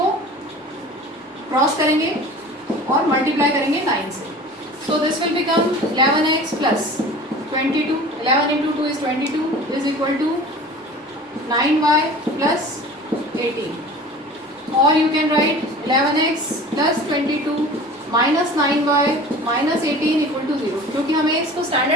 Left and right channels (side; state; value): both; normal; correlation 0.41